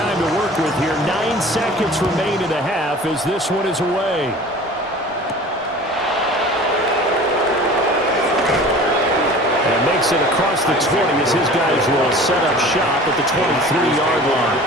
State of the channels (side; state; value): both; normal; correlation 0.42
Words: to work with here. 9 seconds remain in the half as this one is away. And makes it across the 20 as his guys will set up shop at the 23-yard line.